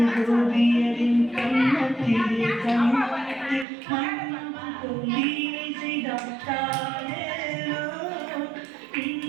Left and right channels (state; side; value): drops out; left; at 3.7 s